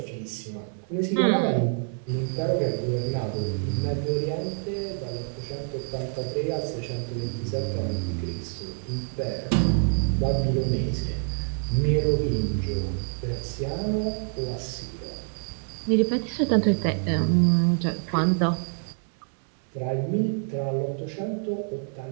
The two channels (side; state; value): left; silent; 60 dB below the other